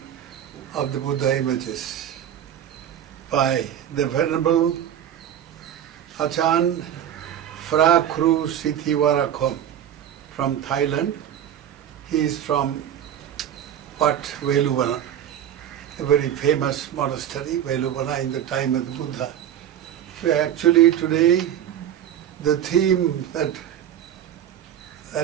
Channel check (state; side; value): quieter; left; 10.2 dB